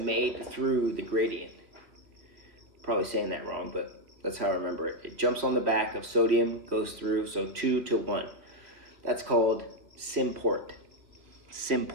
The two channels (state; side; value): late; left; 2.7 ms